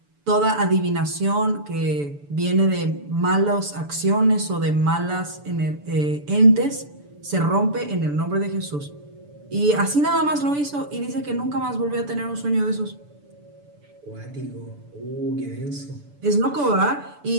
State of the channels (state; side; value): late; left; 6.9 ms